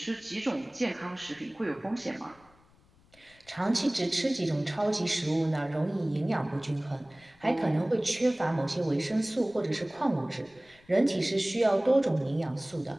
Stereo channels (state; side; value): noise; left; rumble, 30 dB below the sound